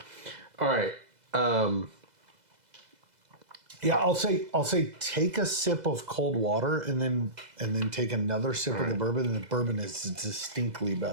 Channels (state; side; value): late; left; 2.0 ms